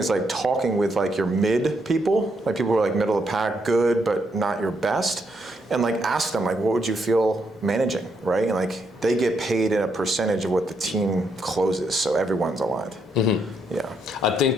talking with your mid people, people who are middle of the pack, good, but not your best, and ask them what would you feel managing, right? And they get paid in a percentage of what the team closes, so everyone's aligned. Yeah. I think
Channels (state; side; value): normal; both; correlation 0.77